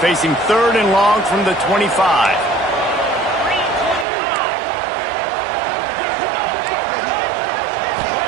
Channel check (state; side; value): drops out; left; at 4.0 s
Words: facing 3rd and long from the 25.